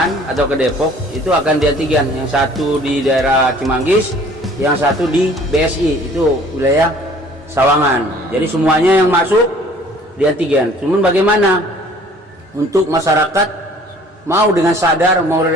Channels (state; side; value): normal; both; correlation 0.53